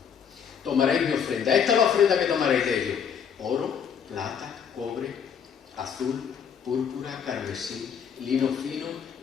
Tomaréis mi ofrenda. Esta es la ofrenda que tomaréis de ellos: oro, plata, cobre, azul, púrpura, carmesí, lino fino,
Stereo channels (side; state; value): right; quieter; 7.5 dB